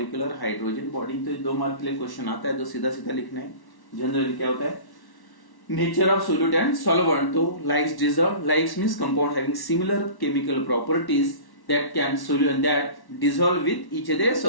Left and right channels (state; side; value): late; right; 1.1 ms